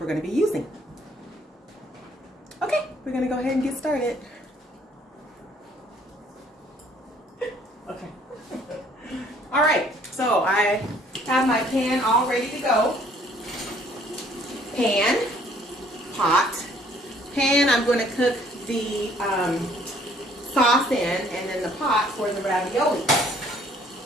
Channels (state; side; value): normal; both; correlation 0.61